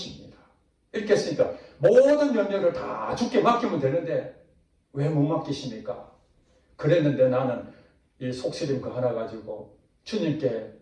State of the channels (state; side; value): identical; both; correlation 1.00